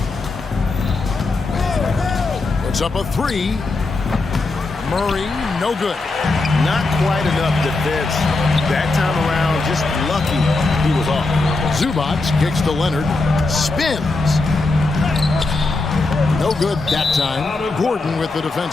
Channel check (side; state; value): right; quieter; 3.4 dB